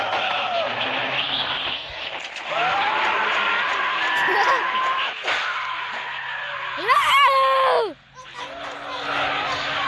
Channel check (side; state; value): both; identical; correlation 1.00